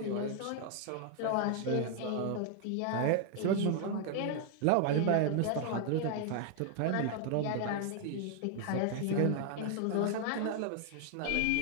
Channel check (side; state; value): both; different; correlation 0.00